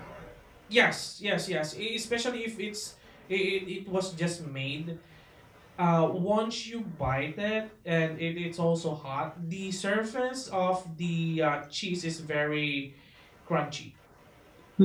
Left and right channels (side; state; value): both; identical; correlation 1.00